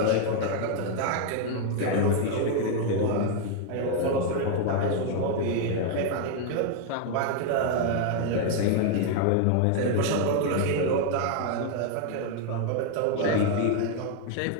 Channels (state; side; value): different; both; correlation 0.00